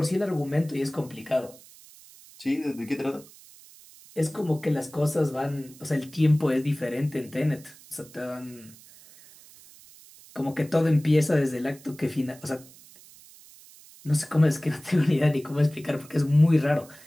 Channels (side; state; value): right; noise; hiss, 22 dB below the sound